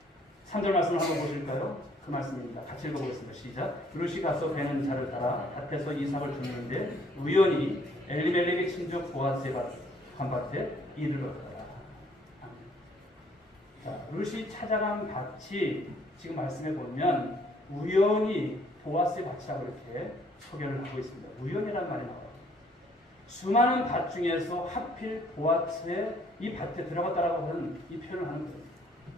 3절 말씀을 한번 보실까요? 그 말씀입니다. 같이 읽어보겠습니다. 시작. 룻이 가서 베는 자를 따라 밭에서 이삭을 줍는데 우연히 엘리멜렉의 친족 보아스의 밭에 이르렀더라. 자, 룻이 찾아간 밭이 지금 말씀해 보면 우연히 보아스의 밭이라고 이렇게 소개를 하고 있습니다. 우연이라는 말이 나와요. 수많은 밭 중에서 하필 보아스의 이 밭에 들어갔다라고 하는 이 표현을 하는 거예요.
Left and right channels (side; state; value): both; normal; correlation 0.63